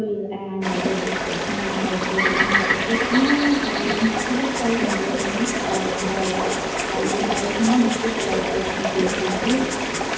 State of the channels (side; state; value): both; identical; correlation 1.00